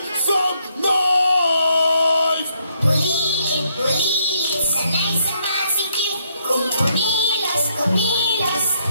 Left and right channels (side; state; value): both; inverted; correlation -0.73